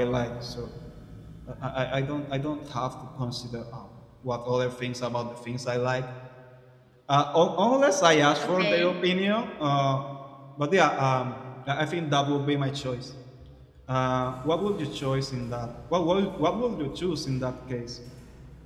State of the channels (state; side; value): identical; both; correlation 1.00